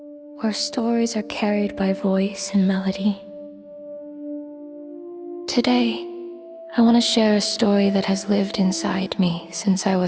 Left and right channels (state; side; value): identical; both; correlation 1.00